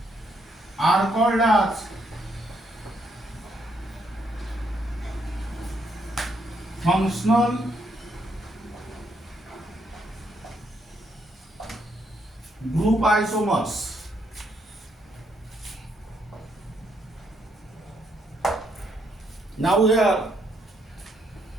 are called as functional group isomers. Now here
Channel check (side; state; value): both; normal; correlation 0.74